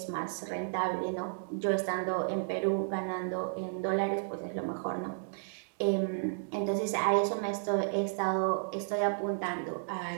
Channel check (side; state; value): left; silent; digital silence